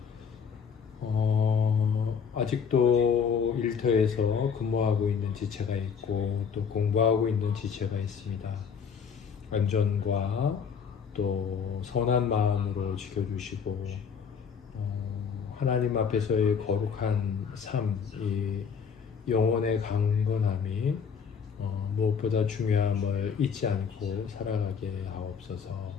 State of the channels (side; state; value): right; quieter; 6.6 dB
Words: 아직도 일터에서 근무하고 있는 지체가 있고 또 공부하고 있는 지체가 있습니다. 안전과 또 선한 마음으로 지켜주시고 하나님 앞에서의 거룩한 삶, 이 영혼의 강건함이 무엇보다 중요함을 잊지 않고 살아가게 하옵소서.